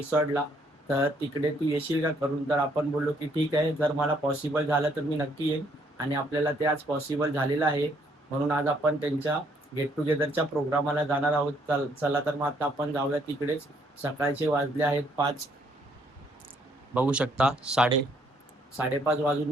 तर तिकडे तू येशील का करून? तर आपण बोललो की ठीक आहे, जर मला पॉसिबल झालं तर मी नक्की येईन. आणि आपल्याला ते आज पॉसिबल झालेलं आहे, म्हणून आज आपण त्यांच्या गेट टुगेदरच्या प्रोग्रामाला जाणार आहोत. चला तर मग आता आपण जाऊया तिकडेच. सकाळचे वाजले आहेत 5, बघू शकता 5:30 वाजून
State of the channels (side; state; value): both; normal; correlation 0.68